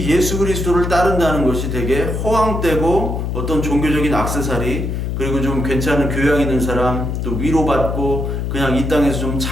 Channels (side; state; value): left; noise; hum, 2 dB below the sound